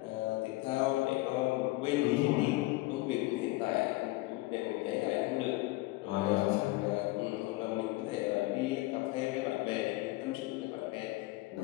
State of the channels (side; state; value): right; quieter; 20.3 dB